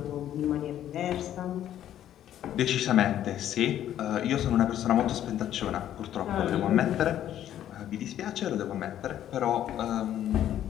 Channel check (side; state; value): right; quieter; 11.4 dB